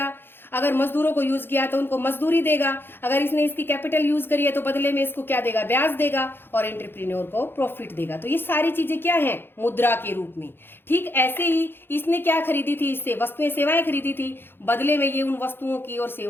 अगर मजदूरों को यूज किया तो उनको मजदूरी देगा, अगर इसने इसकी कैपिटल यूज करी है तो बदले में इसको क्या देगा, ब्याज देगा, और एंटरप्रेन्योर को प्रॉफिट देगा। तो ये सारी चीजें क्या है, मुद्रा के रूप में। ठीक ऐसे ही इसने क्या खरीदी थी, इससे वस्तुएं सेवाएं खरीदी थी, बदले में ये उन वस्तुओं की और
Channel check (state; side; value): late; right; 0.10 ms